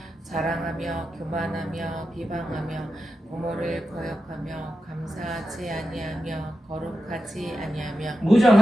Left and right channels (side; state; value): both; normal; correlation 0.90